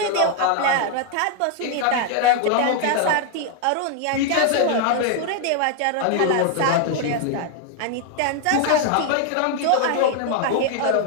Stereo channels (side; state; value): both; different; correlation 0.00